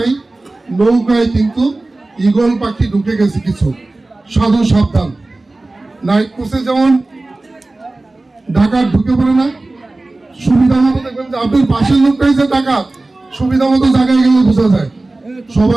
নৌকায় কিন্তু ঈগল পাখি ঢুকে গেছে কিছু, সাধু সাবধান। নাইট কোর্সে যেমন ডাকাত ঢুকে পড়ে না, সুবিধা মতো দেখবেন যে আপনার পাশের লোকটাই যে ডাকাত, সুবিধা মতো জায়গায় গেলে বোঝা যায়।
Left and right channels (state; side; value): quieter; left; 3.0 dB